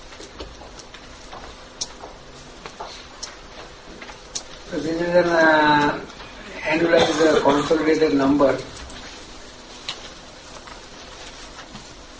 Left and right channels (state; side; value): identical; both; correlation 1.00